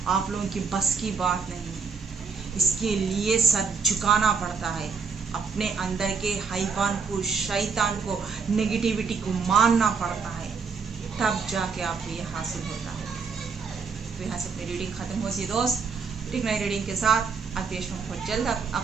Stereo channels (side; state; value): left; quieter; 5.4 dB